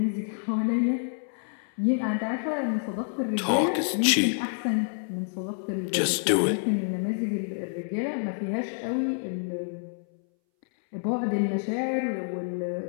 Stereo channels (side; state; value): right; silent; 59 dB below the other